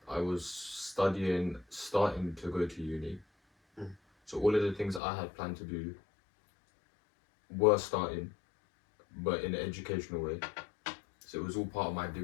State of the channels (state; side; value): drops out; right; at 5.0 s